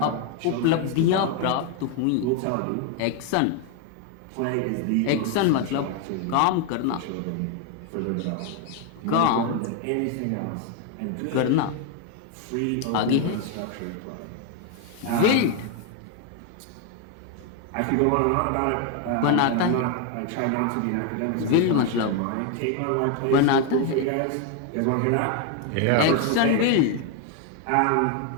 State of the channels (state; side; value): different; both; correlation 0.01